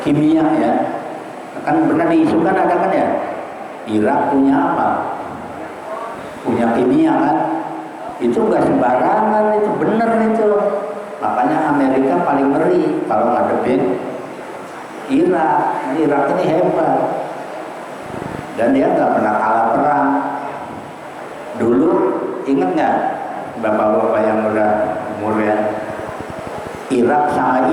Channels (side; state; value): both; identical; correlation 1.00